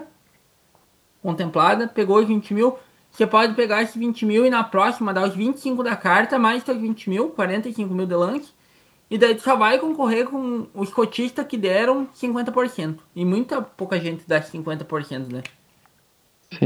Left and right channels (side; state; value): both; identical; correlation 1.00